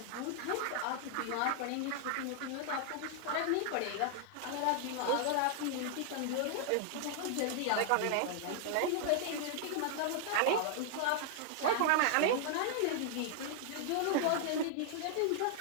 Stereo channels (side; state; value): both; different; correlation 0.00